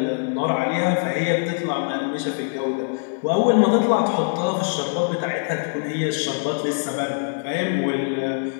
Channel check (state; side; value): silent; right; 56 dB below the other